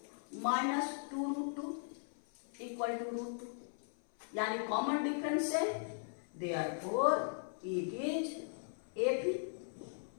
-2√2 = √2, यानी कॉमन डिफरेंस है, देयरफॉर इट इज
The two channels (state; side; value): silent; right; 52 dB below the other